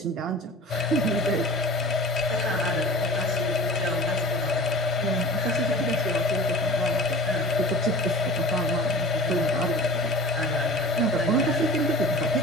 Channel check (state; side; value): normal; both; correlation 0.38